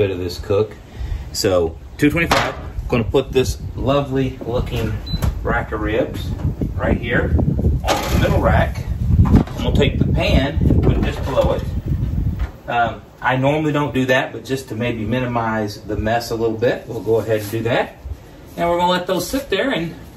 of this cook. So 225. Going to put this lovely looking rack of ribs right here on the middle rack. I'm going to take the pan and put it just below it. I normally don't do that, but just to maybe minimize the mess a little bit, we'll go ahead and do that. And we're going to let those sit there and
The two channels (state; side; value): identical; both; correlation 1.00